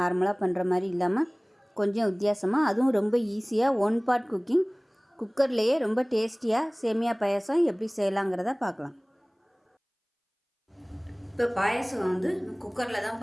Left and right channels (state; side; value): identical; both; correlation 1.00